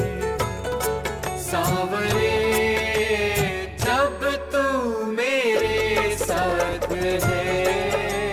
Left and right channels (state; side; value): identical; both; correlation 1.00